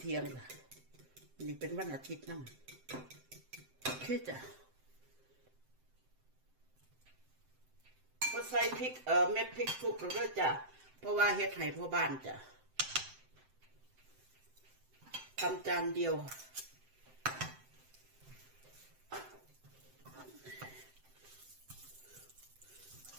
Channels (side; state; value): left; late; 7.7 ms